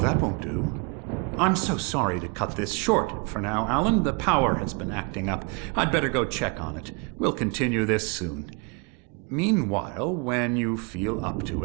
won't do. I'm so sorry to cut this short for now, Alan. The power has been acting up. I'd better go check on it. We'll continue this soon. Meanwhile, when you feel up to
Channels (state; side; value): quieter; left; 32.2 dB